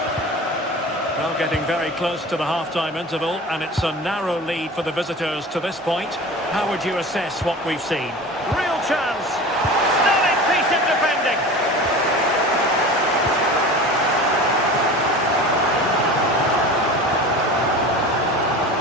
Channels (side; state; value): both; normal; correlation 0.36